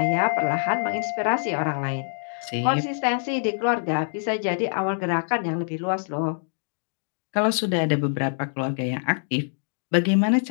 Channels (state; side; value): silent; right; 62 dB below the other